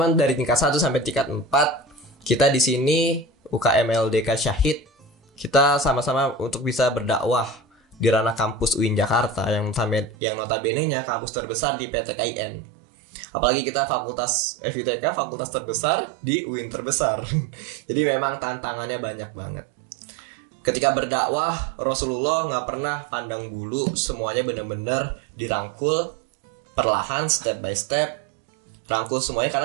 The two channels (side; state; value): left; drops out; at 10.2 s